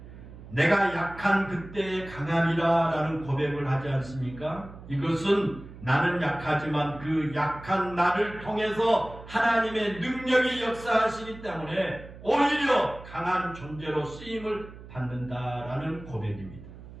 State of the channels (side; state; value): right; noise; hum, 16 dB below the sound